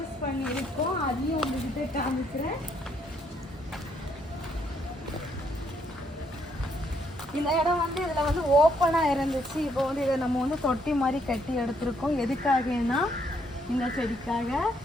பண்ணியிருக்கோம், அதையும் உங்ககிட்ட காமிக்கிறேன். இந்த இடம் வந்து இதில் வந்து ஓப்பனாக இருந்துச்சு. இப்போ வந்து இதை நம்ம வந்து தொட்டி மாதிரி கட்டி எடுத்துருக்கோம். எதுக்காகனா இந்த செடிக்காக.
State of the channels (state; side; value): normal; both; correlation 0.72